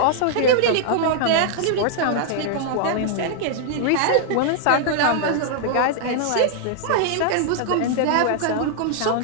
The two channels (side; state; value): both; different; correlation -0.01